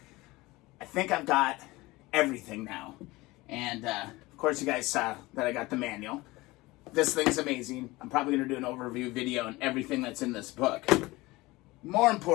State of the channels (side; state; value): right; quieter; 20.9 dB